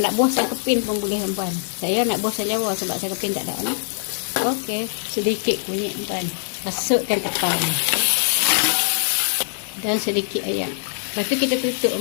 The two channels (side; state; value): right; silent; digital silence